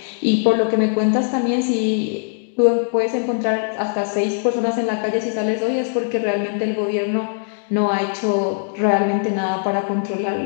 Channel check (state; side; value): silent; right; digital silence